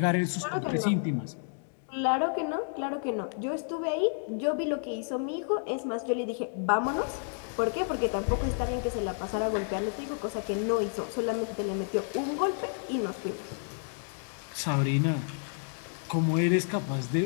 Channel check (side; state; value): right; silent; 57 dB below the other